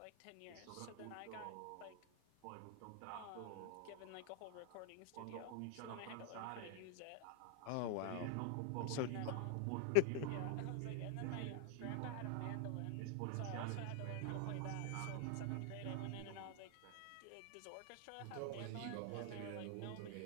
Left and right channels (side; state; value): both; different; correlation 0.00